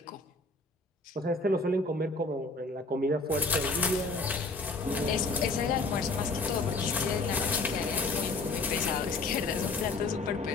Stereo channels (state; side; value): quieter; right; 3.4 dB